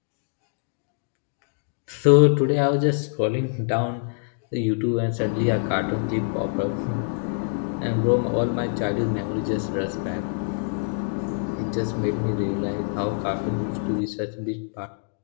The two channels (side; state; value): right; silent; digital silence